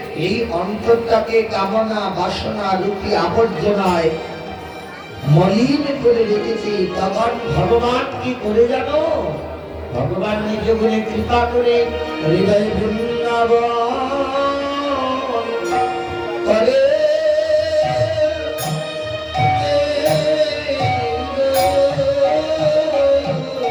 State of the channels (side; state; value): both; identical; correlation 1.00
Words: এই অন্তরটাকে কামনা বাসনা রূপী আবর্জনায় মলিন করে রেখেছে, তখন ভগবান কি করে জানো, ভগবান নিজ গুণে কৃপা করে হৃদয় বৃন্দাবন করে